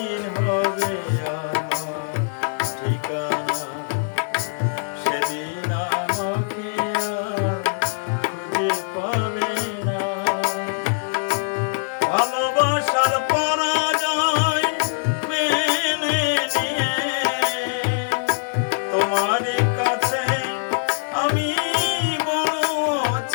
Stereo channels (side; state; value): right; silent; digital silence